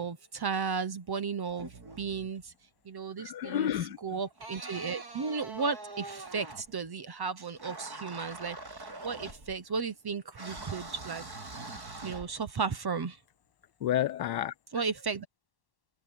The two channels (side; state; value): left; late; 1.1 ms